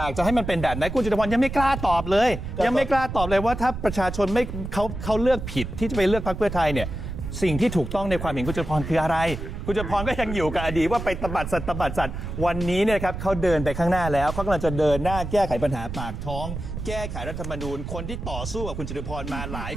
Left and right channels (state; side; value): noise; right; rumble, 7 dB below the sound